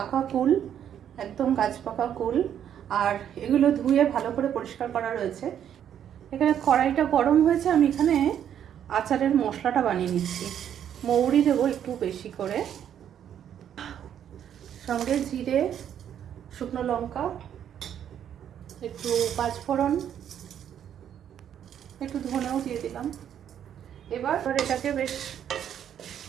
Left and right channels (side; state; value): left; quieter; 9.6 dB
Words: কুল, একদম গাছ পাকা কুল, আর এগুলো ধুয়ে ভালো করে পরিষ্কার করা রয়েছে। এখানে কড়াইটা গরম হয়েছে, আমি এখানে আচারের মশলাটা বানিয়ে নিচ্ছি। মৌরি দেবো একটু বেশি করে, সঙ্গে জিরে, শুকনো লঙ্কা, একটু পাঁচফোড়ন, একটু ধনেও দিয়ে দিলাম। এবার এটাকে বেশ